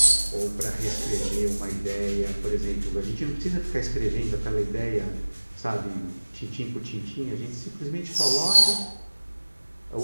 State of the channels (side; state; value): both; inverted; correlation -1.00